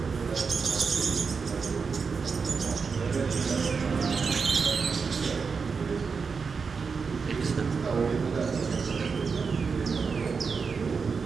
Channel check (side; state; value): left; quieter; 5.3 dB